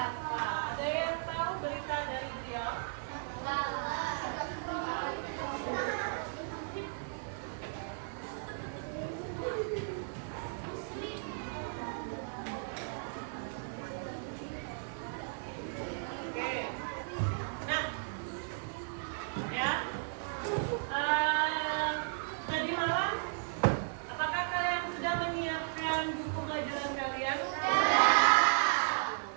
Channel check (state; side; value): silent; left; 54 dB below the other